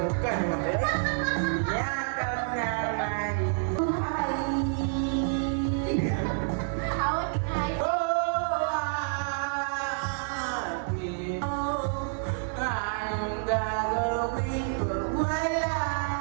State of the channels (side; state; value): left; silent; 57 dB below the other